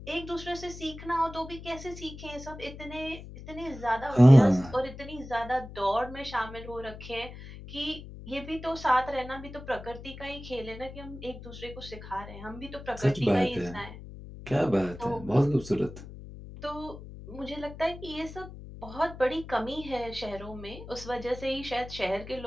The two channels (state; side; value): noise; left; hum, 13 dB below the sound